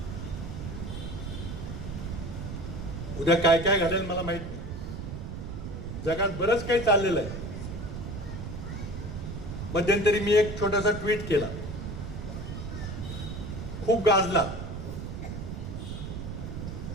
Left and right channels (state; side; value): noise; right; rumble, 6 dB below the sound